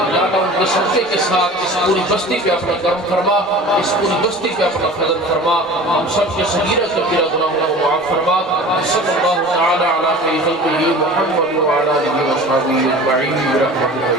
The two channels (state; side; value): normal; both; correlation 0.40